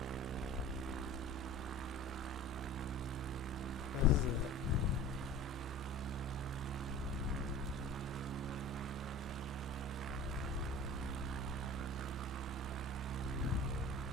This is it.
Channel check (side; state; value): both; normal; correlation 0.40